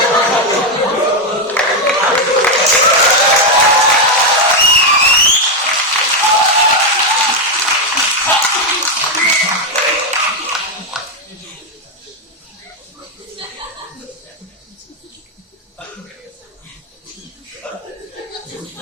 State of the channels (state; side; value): normal; both; correlation 0.04